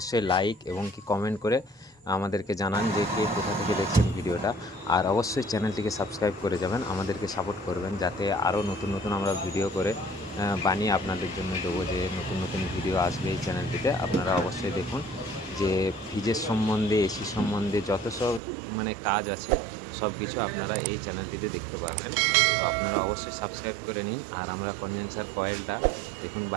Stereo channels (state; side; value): drops out; left; at 18.4 s